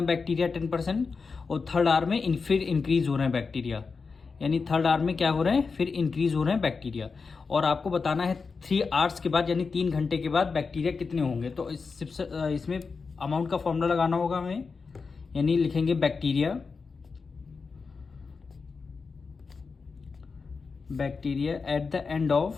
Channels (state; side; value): quieter; right; 4.8 dB